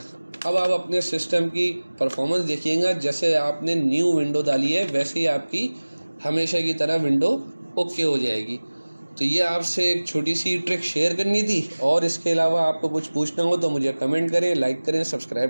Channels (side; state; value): both; inverted; correlation -1.00